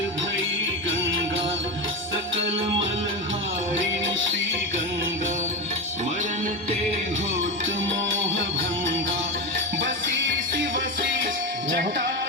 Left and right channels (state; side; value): normal; both; correlation 0.17